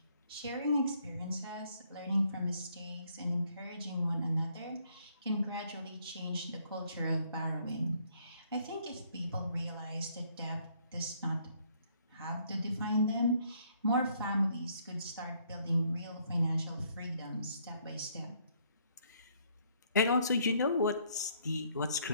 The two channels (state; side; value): inverted; both; correlation -0.67